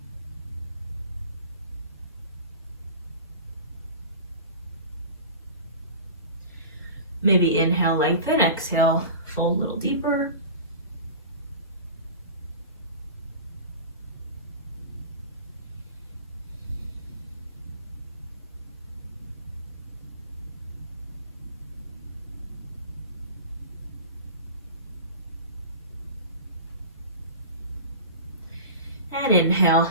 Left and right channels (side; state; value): both; inverted; correlation -0.35